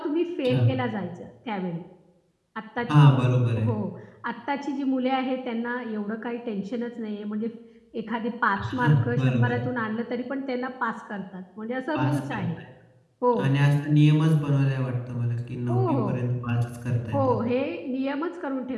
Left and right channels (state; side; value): identical; both; correlation 1.00